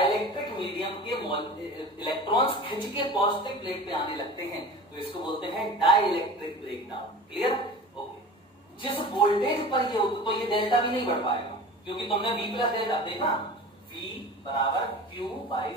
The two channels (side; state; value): both; normal; correlation 0.37